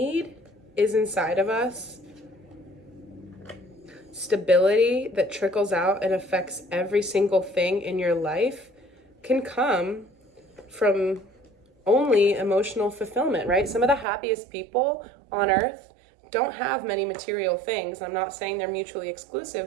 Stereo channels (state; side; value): drops out; left; at 14.1 s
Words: is inside of us. Stability that trickles out and affects every single thing in your life can come from only emotional fulfillment, right? Some of the happiest people on earth don't have many material things. I'm not saying they're mutually